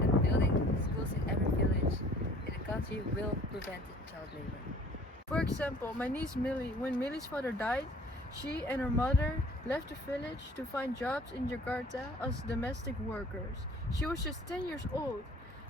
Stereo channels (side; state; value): both; normal; correlation 0.52